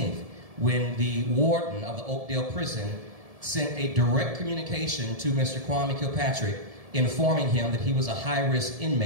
when the warden of the Oakdale prison sent a direct communication to Mr. Kwame Kilpatrick informing him that he was a high-risk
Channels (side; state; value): left; late; 1.7 ms